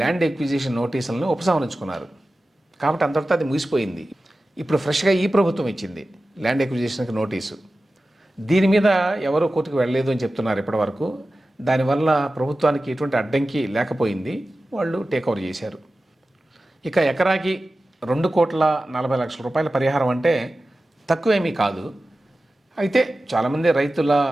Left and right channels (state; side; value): normal; both; correlation 0.95